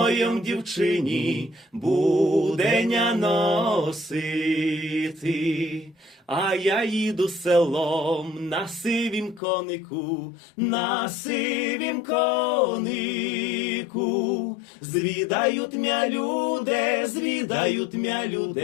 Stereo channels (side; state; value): right; drops out; at 9.4 s